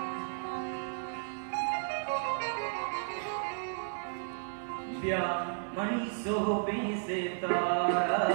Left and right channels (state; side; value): silent; left; 55 dB below the other